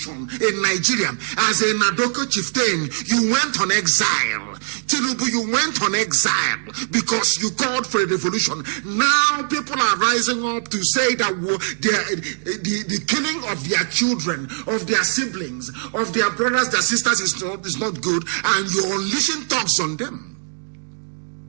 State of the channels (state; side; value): silent; left; digital silence